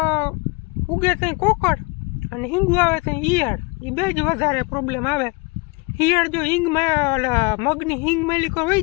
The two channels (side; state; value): right; quieter; 28.1 dB